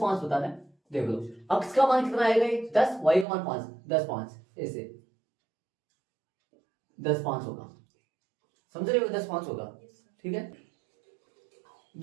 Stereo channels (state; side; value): drops out; left; at 3.2 s